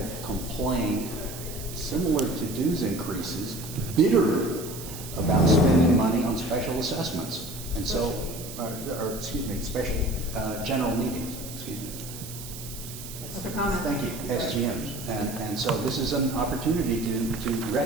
complained, similar to dues increases, bitterly about spending money on special assessments. And so, special general meetings, excuse me. Other comments? Thank you, SGMs. And so this is an opportunity to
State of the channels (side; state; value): right; noise; hiss, 12 dB below the sound